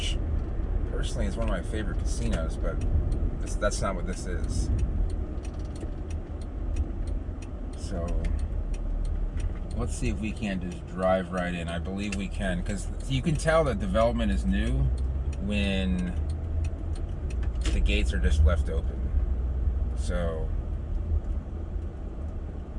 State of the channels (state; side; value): identical; both; correlation 1.00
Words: personally is one of my favorite casinos, but that's not what this is. So let's see if we can just drive right in. I believe we can, because you can tell that development is new when the gates are just left open. So